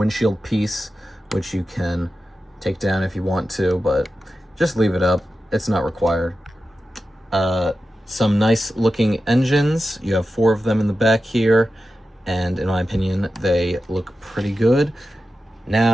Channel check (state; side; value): normal; both; correlation 0.92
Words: piece, which you can take down if you want to, but just leave it up. It's not required. Some nice looking engines. You have 4 of them in the back here, and in my opinion, they look pretty good.